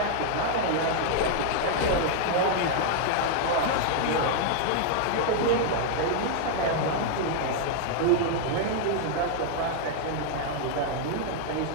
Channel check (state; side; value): different; both; correlation -0.01